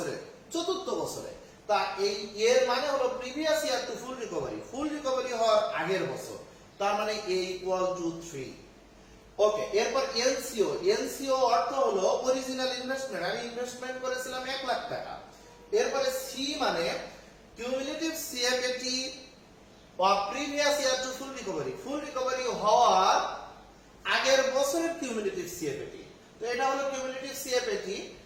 চতুর্থ বছরে। তা এই এর মানে হলো previous year to full recovery, full recovery হওয়ার আগের বছর, তার মানে a ইকুয়াল টু 3। ওকে, এরপর এলসিও, এলসিও অর্থ হলো অরিজিনাল ইনভেস্টমেন্ট, আমি ইনভেস্টমেন্ট করেছিলাম 1 লাখ টাকা। এরপরে সি মানে cumulative CFAT of previous year to full recovery, full recovery হওয়ার আগের বছরের কিউমুলেটিভ সিএফএটি। তো এটা হলো কিউমুলেটিভ সিএফএটি,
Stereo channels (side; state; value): both; identical; correlation 1.00